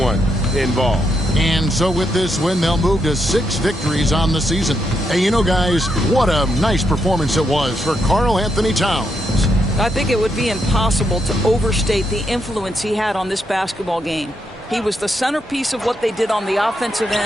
involved. And so with this win, they'll move to 6 victories on the season. And you know, guys, what a nice performance it was for Karl-Anthony Towns. I think it would be impossible to overstate the influence he had on this basketball game. He was the centerpiece of what they did on the offensive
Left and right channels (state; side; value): normal; both; correlation 0.80